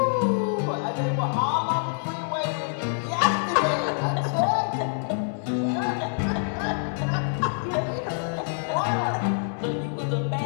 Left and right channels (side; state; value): right; silent; 61 dB below the other